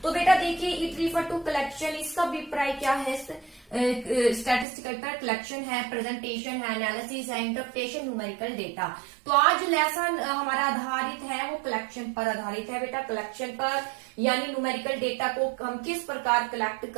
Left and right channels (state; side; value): drops out; left; at 4.7 s